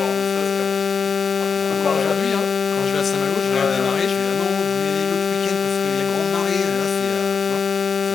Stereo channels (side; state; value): right; quieter; 5.6 dB